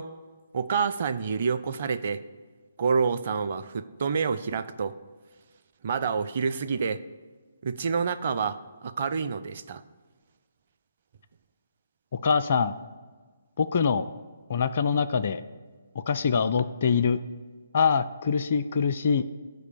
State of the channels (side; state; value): both; inverted; correlation -0.71